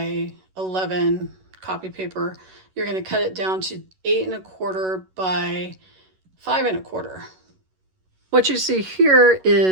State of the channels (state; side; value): late; left; 11 ms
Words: 11 copy paper. You're going to cut it down to 8.25 by 5.25. What you see here